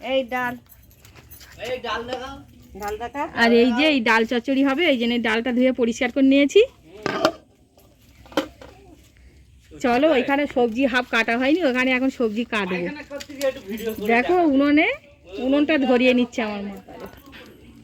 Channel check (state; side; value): identical; both; correlation 1.00